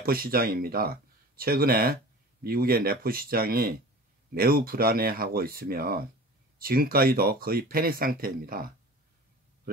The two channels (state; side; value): normal; both; correlation 0.39